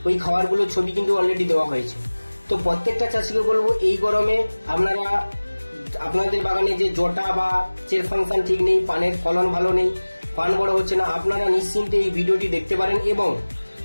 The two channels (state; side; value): inverted; both; correlation -1.00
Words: ওই খাবারগুলো ছবি কিন্তু অলরেডি দেওয়া হয়েছে। তো প্রত্যেকটা চাষিকে বলবো, এই গরমে আপনারা আপনাদের বাগানে যে জটা বা চের ফাংশন ঠিক নেই, পানের ফলন ভালো নেই, পান বড় হচ্ছে না, আপনারা নিশ্চিন্তে এই ভিডিওটি দেখতে পারেন এবং